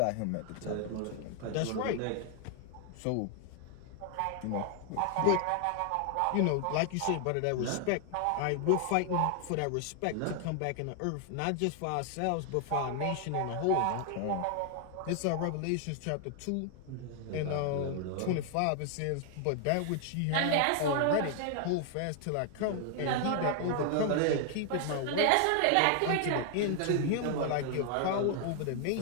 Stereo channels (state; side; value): different; both; correlation 0.00